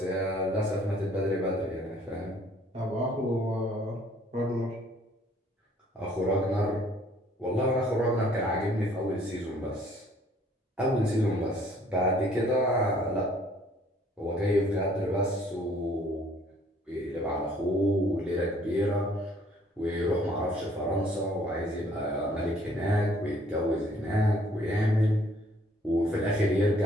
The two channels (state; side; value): normal; both; correlation 0.60